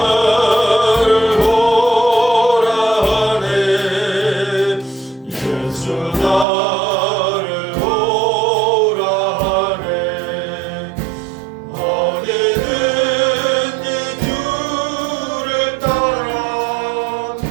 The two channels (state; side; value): drops out; left; at 6.5 s